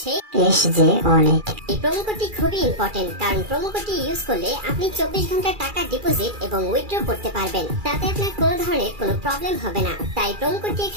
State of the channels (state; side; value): late; left; 2.4 ms